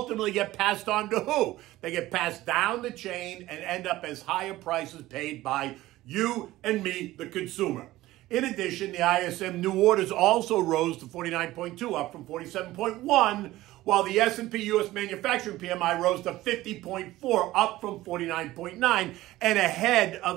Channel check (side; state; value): left; quieter; 16.7 dB